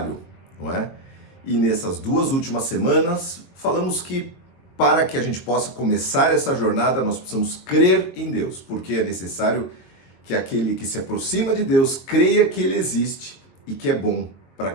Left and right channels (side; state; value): right; late; 22 ms